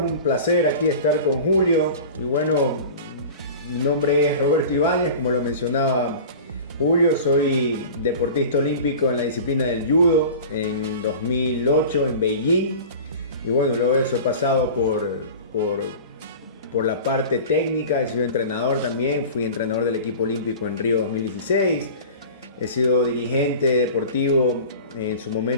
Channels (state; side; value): inverted; both; correlation -0.37